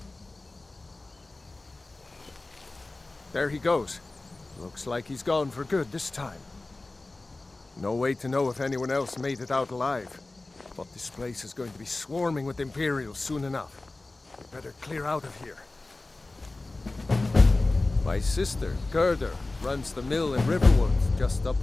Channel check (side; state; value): right; quieter; 3.1 dB